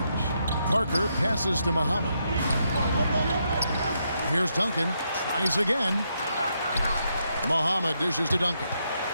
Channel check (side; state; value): both; inverted; correlation -0.79